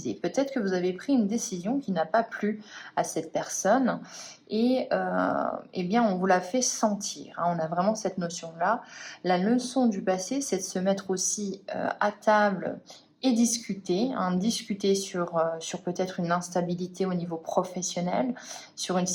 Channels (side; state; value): both; identical; correlation 1.00